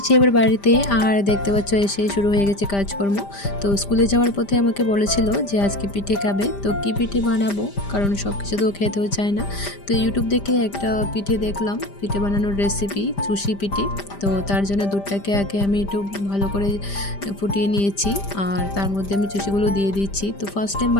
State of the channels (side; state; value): right; late; 5.0 ms